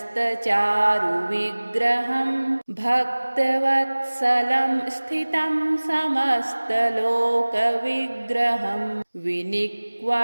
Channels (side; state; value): both; inverted; correlation -1.00